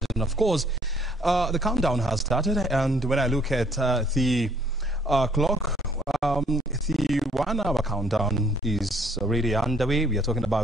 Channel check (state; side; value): normal; both; correlation 0.62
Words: And of course, the countdown has started, and when I look at the clock, the 1 hour countdown is already underway. We are talking